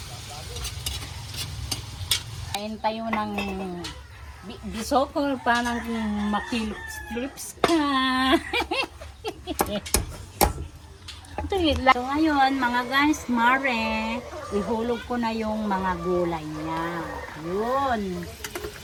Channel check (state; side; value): identical; both; correlation 1.00